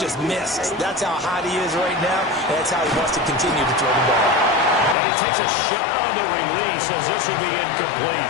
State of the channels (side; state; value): right; drops out; at 5.0 s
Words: missed. That's how hot he is right now, and that's how he wants to continue to throw the ball. And he takes a shot on the release as this will be